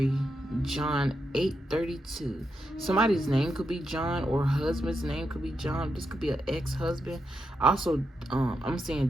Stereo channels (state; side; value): normal; both; correlation 0.84